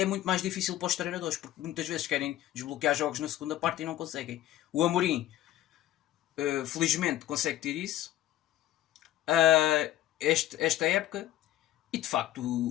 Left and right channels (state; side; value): quieter; right; 13.7 dB